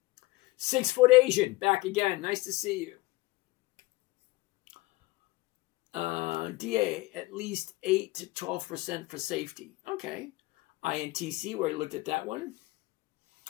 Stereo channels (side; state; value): right; quieter; 20.7 dB